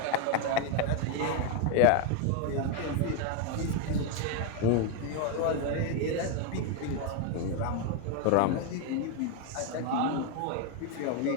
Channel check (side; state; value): both; different; correlation 0.01